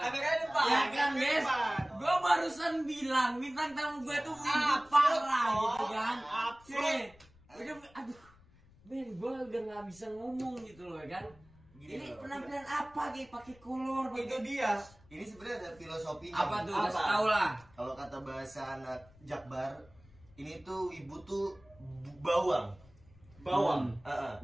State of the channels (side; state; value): left; noise; rumble, 26 dB below the sound